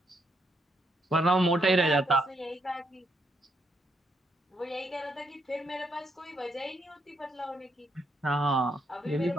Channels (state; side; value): normal; both; correlation 0.76